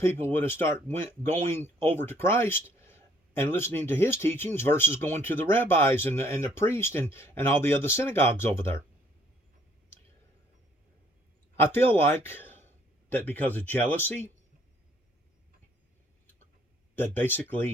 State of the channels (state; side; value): normal; both; correlation 0.63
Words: would have going over to Christ and listening to his teachings versus going to the rabbis and the priest and all the other synagogues over there. I feel like that because of jealousy, that